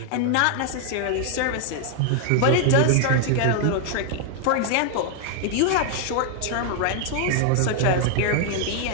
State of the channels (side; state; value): both; different; correlation 0.00